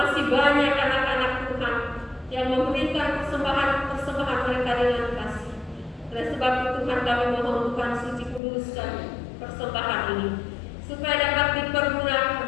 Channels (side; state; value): right; drops out; at 8.4 s